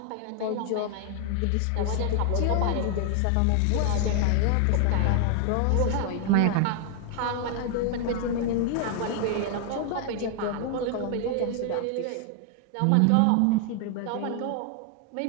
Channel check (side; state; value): both; different; correlation 0.00